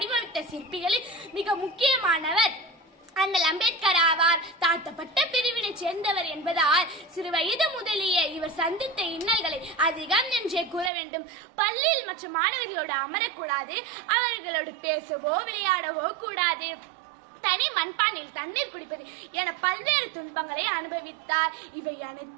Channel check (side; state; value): left; drops out; at 10.9 s